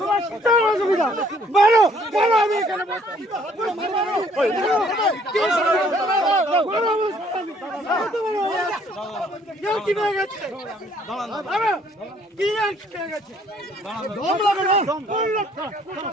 কিসের অসুবিধা? মারো, মারো, আমি এখানে বসছি। কি পেয়ে গেছে? কি পেয়ে গেছে? দম লাগে না?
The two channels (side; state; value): both; normal; correlation 0.62